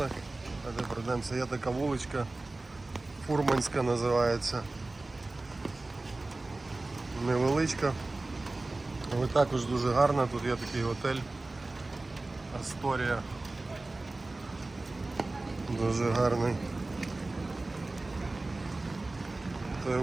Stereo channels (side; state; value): left; quieter; 3.1 dB